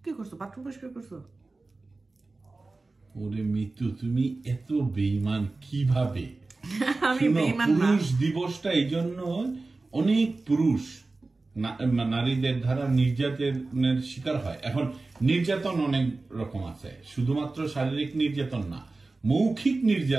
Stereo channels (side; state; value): left; quieter; 3.4 dB